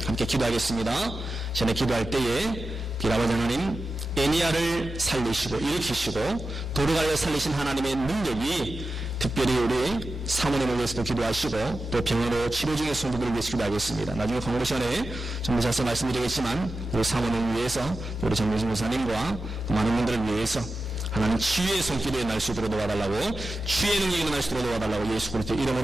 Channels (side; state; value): both; normal; correlation 0.92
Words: 함께 기도하겠습니다. 전에 기도할 때에 아버지 하나님, 에니야를 살리시고 일으키시고 도로가를 살리신 하나님의 능력이 특별히 우리 사모님을 위해서도 기도하시고 또 병원으로 치료 중인 성도들을 위해서 기도하겠습니다. 나중에 건강 시간에 좀 더 자세히 말씀드리겠지만 우리 사모님을 위해서 우리 정민신 목사님과 많은 분들을 위해서 하나님 치유의 손길이 날 수 있도록 도와달라고, 치유의 능력이 일어날 수 있도록 도와달라고 예수 그리스도